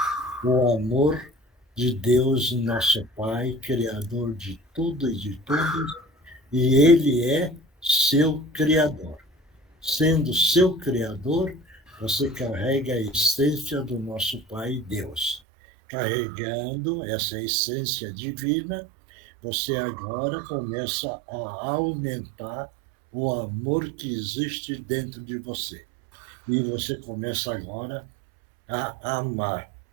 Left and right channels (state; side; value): drops out; left; at 15.4 s